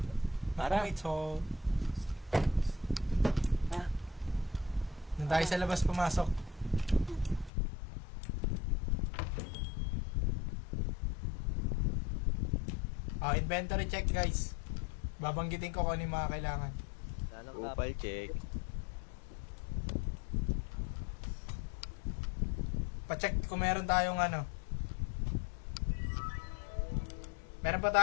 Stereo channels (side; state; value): right; drops out; at 7.5 s